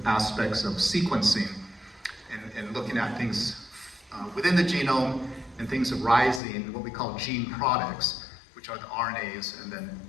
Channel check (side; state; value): right; drops out; at 6.4 s